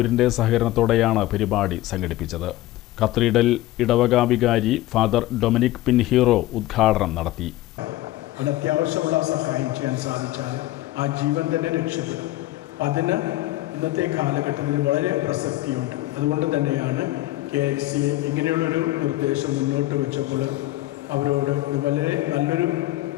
സഹകരണത്തോടെയാണ് പരിപാടി സംഘടിപ്പിച്ചത്. കത്തീഡ്രൽ ഇടവക വികാരി ഫാദർ ഡൊമിനിക് പിൻഹീറോ ഉദ്ഘാടനം നടത്തി. അത്യാവശ്യമുള്ള സഹായം ചെയ്യാൻ സാധിച്ചാൽ ആ ജീവൻ തന്നെ രക്ഷപ്പെടും. അതിന് ഇന്നത്തെ കാലഘട്ടത്തിൽ വളരെ പ്രസക്തിയുണ്ട്. അതുകൊണ്ട് തന്നെയാണ് KLCA ഇങ്ങനെയുള്ളൊരു നിർദ്ദേശം മുന്നോട്ട് വെച്ചപ്പോൾ അവരോട് ഇത് വളരെ നല്ലൊരു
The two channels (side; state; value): right; quieter; 16.3 dB